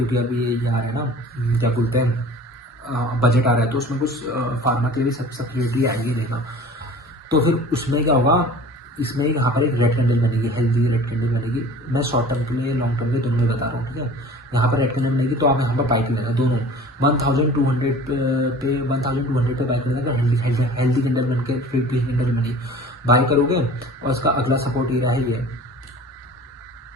अभी ये आ रहा है ना, क्या बोलते हैं, बजट आ रहा है, तो उसमें कुछ फार्मा के लिए सब्सिडी आएगी देना, तो फिर उसमें क्या होगा, इसमें यहाँ पर एक रेड कैंडल बनेगी, हेल्दी रेड कैंडल बनेगी। मैं शॉर्ट टर्म के लिए लॉन्ग टर्म के दोनों में बता रहा हूँ, ठीक है। यहाँ पर रेड कैंडल बनेगी तो आप यहाँ पर बाइक लेना, दोनों 1200 पे 1200 पे बाइक लेना। अगर हेल्दी कैंडल बन के फिर ग्रीन कैंडल बनी, बाई करोगे और उसका अगला सपोर्ट एरिया है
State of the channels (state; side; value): normal; both; correlation 0.44